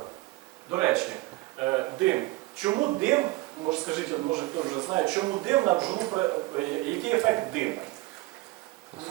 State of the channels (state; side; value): quieter; left; 20.6 dB